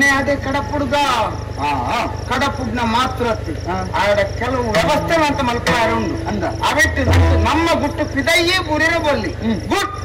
ಅದೇ ಕಡಪುಡ್ಗ ಕಡಪುಡ್ನ ಮಾತ್ರ ಆಡ ಕೆಲವು ವ್ಯವಸ್ಥೆ ಅಂತ ಮಲ್ಪಾರ ಉಂಡು ಅಂದ ಅವೆಟ್ಟು ನಮ್ಮ ಗುಟ್ಟು ಪಿದಯ್ಯೇ ಬುರಿರ ಬಲ್ಲಿ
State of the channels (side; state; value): both; identical; correlation 1.00